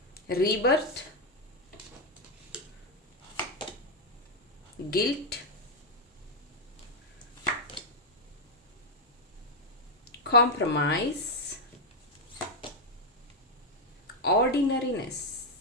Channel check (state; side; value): normal; both; correlation 0.01